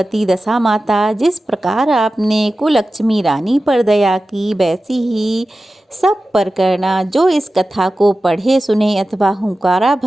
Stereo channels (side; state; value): both; normal; correlation 0.94